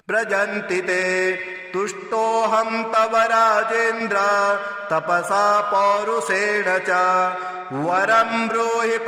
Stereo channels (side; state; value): both; identical; correlation 1.00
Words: व्रजन्ति ते तुष्टोऽहं तव राजेन्द्र तपसा पौरुषेण च वरं ब्रूहि